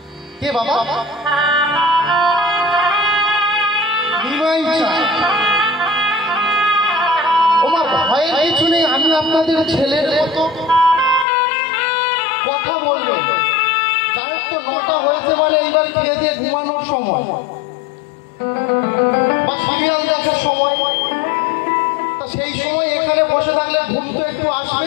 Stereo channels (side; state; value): right; drops out; at 11.2 s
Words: কে বাবা? নিমাই চাঁদ। ওমা ভয়ের কিছু নেই, আমি আপনাদের ছেলের মতো কথা বলবেন। জানেন তো 9টা হয়েছে মানে এইবার খেয়ে দিয়ে ঘুমানোর সময় বা সিরিয়াল দেখার সময়। তা সেই সময় এখানে বসে থাকলে ঘুম তো একটু